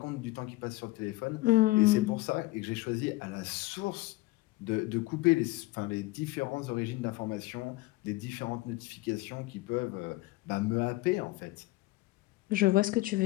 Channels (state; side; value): quieter; right; 20.2 dB